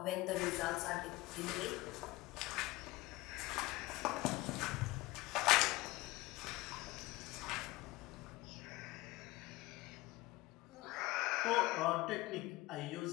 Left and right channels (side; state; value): right; quieter; 20.1 dB